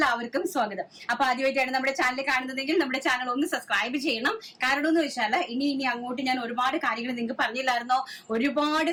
സ്വാഗതം. അപ്പൊ ആദ്യമായിട്ടാണ് നമ്മുടെ ചാനൽ കാണുന്നതെങ്കിൽ നമ്മുടെ ചാനൽ ഒന്ന് സബ്സ്ക്രൈബ് ചെയ്യണം. കാരണം എന്ന് വെച്ചാൽ ഇനി അങ്ങോട്ട് ഞാൻ ഒരുപാട് കാര്യങ്ങൾ നിങ്ങൾക്ക് പറഞ്ഞില്ലായിരുന്നോ,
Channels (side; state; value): both; identical; correlation 1.00